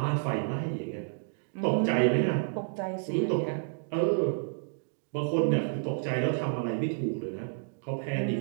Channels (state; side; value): silent; left; digital silence